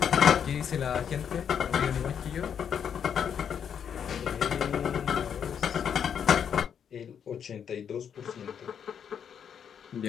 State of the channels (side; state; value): right; quieter; 8.0 dB